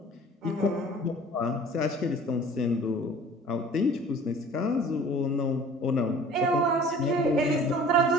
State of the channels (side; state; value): both; normal; correlation 0.47